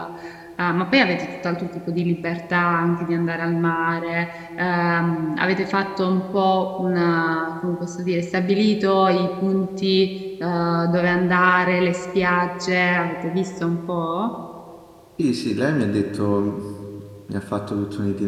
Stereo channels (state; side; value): identical; both; correlation 1.00